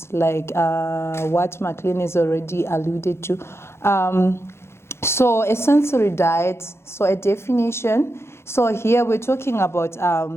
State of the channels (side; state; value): right; late; 0.12 ms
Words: like what McLean has already alluded to. So a sensory diet, so a definition. So here we're talking about